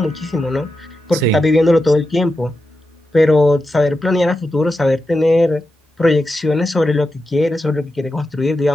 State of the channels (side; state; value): both; normal; correlation 0.89